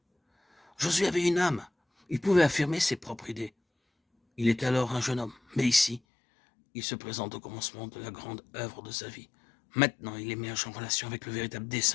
Josué avait une âme. Il pouvait affirmer ses propres idées. Il était alors un jeune homme. Mais ici, il se présente au commencement de la grande œuvre de sa vie. Maintenant, il émerge en relation avec le véritable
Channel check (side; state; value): right; drops out; at 6.0 s